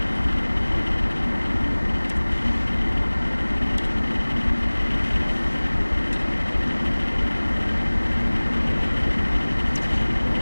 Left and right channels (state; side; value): inverted; both; correlation -1.00